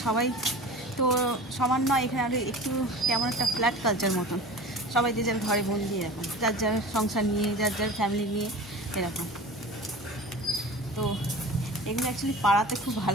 সবাই তো সমান নয়, এখানে আর একটু কেমন একটা ফ্ল্যাট কালচার মতন, সবাই যে যার ঘরে বন্দি, এরকম যার যার সংসার নিয়ে, যার যার ফ্যামিলি নিয়ে এরকম। তো এগুলো অ্যাকচুয়ালি পাড়াতে খুব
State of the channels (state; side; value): normal; both; correlation 0.37